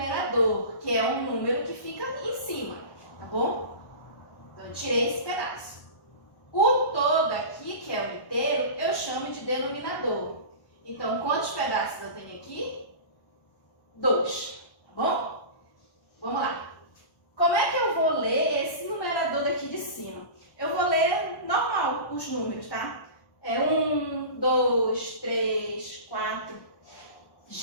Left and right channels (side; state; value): right; late; 1.1 ms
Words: que é um número que fica em cima, tá bom? Então, eu tirei esse pedaço. O todo aqui, que é o inteiro, eu chamo de denominador. Então, quantos pedaços eu tenho aqui? 2, tá bom? Vamos lá. Como é que eu vou ler esse numerador daqui de cima? Eu vou ler normal os números, tá? 1, 2, 3, 4.